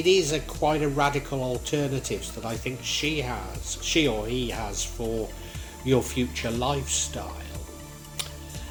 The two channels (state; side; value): identical; both; correlation 1.00